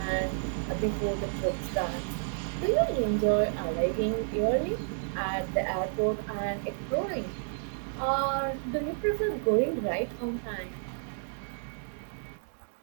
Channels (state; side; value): silent; left; digital silence